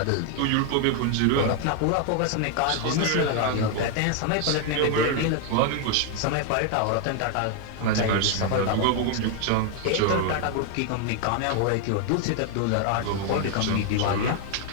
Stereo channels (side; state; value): both; different; correlation 0.01